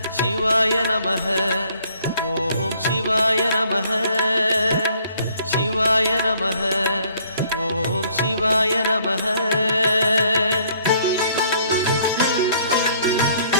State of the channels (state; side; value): inverted; both; correlation -0.62